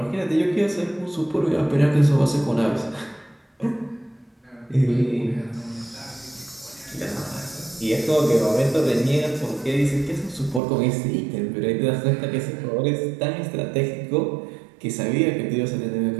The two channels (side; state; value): left; drops out; at 10.6 s